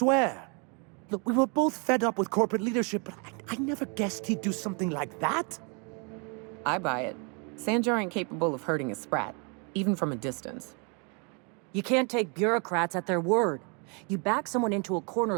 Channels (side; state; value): left; quieter; 35.0 dB